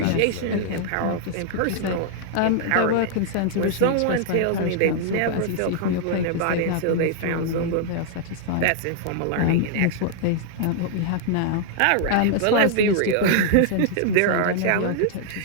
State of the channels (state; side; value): different; both; correlation -0.01